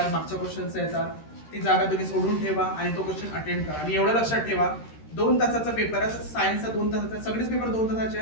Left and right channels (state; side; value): late; right; 13 ms